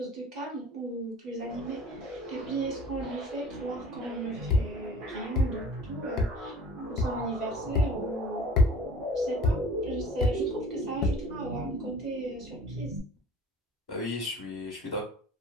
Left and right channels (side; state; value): both; normal; correlation 0.46